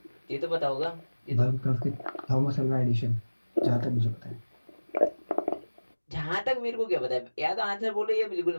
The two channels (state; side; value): inverted; both; correlation -1.00